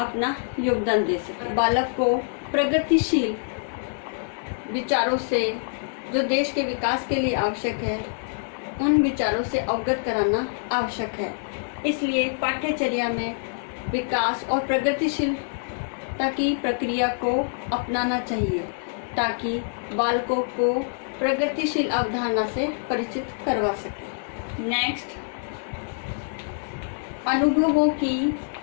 योगदान दे सके। बालक को प्रगतिशील विचारों से, जो देश के विकास के लिए आवश्यक है, उन विचारों से अवगत कराना आवश्यक है। इसलिए पाठ्यचर्या में विकास और प्रगतिशीलता की प्रक्रिया को अपनाना चाहिए, ताकि बालकों को प्रगतिशील अवधारणा से परिचित करवा सके। नेक्स्ट, अनुभवों की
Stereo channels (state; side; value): silent; right; digital silence